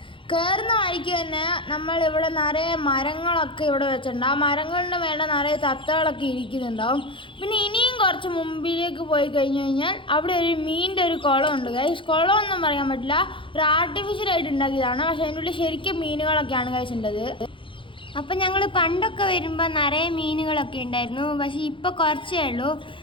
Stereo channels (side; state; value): right; late; 0.25 ms